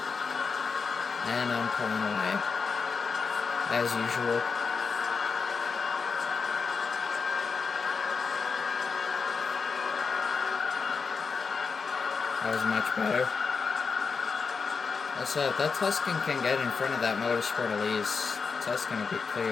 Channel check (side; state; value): right; quieter; 5.2 dB